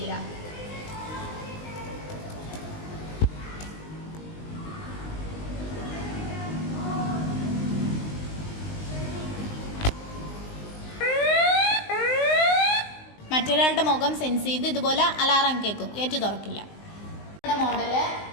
മറ്റൊരാളുടെ മുഖം സെൻസ് ചെയ്ത് ഇതുപോലെ അലാറം കേൾക്കും, ഗേറ്റ് തുറക്കില്ല. മോഡല്.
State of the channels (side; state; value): right; late; 19 ms